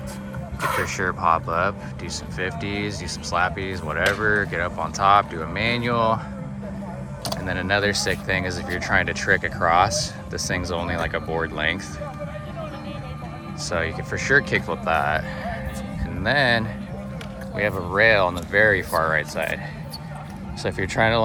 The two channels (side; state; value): both; identical; correlation 1.00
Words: For sure pop up, do some 50s, do some slappies, whatever, get up on top, do a manual. And then another sick thing is if you're trying to trick across, this thing's only like a board length. So you can for sure kickflip that. And then we have a rail on the very far right side. So if you're trying to